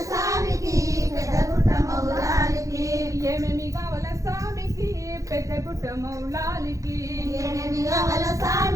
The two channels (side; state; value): left; late; 0.16 ms